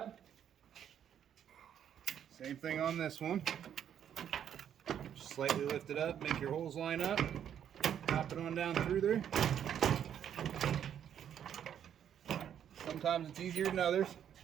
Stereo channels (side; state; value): left; quieter; 9.3 dB